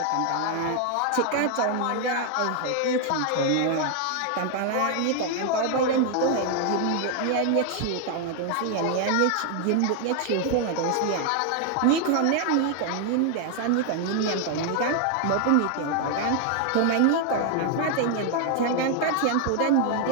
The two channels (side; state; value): both; different; correlation 0.00